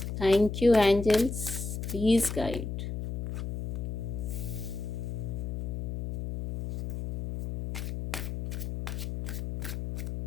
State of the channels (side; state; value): left; noise; hum, 4 dB below the sound